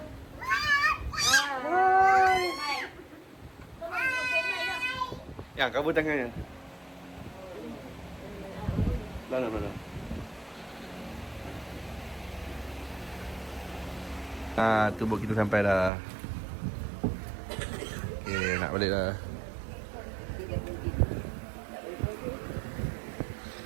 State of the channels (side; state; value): left; drops out; at 15.9 s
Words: Yang kabur tangannya. Mana. Tu boat kita sampai dah. Okey, nak balik dah.